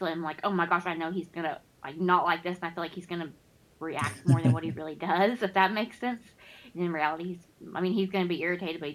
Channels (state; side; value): identical; both; correlation 1.00